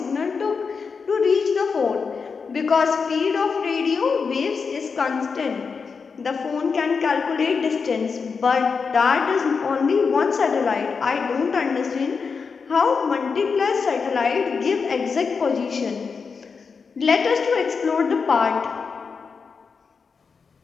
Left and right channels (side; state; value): right; quieter; 5.3 dB